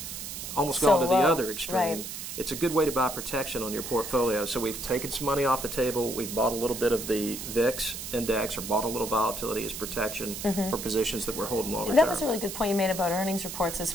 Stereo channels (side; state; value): right; noise; hiss, 8 dB below the sound